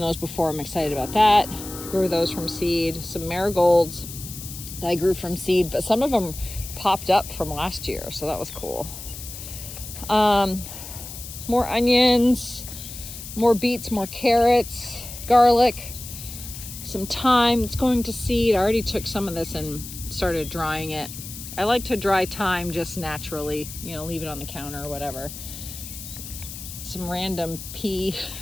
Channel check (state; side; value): noise; left; hiss, 11 dB below the sound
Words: before. I'm excited about that. Grew those from seed. Some marigolds that I grew from seed, but some of them popped up from last year, so that was cool. More onions, more beets, more carrots, garlic, some thyme. It's going to seed. I already took some of this and started drying it. I like to dry thyme just naturally, you know, leave it on the counter or whatever. Some random pea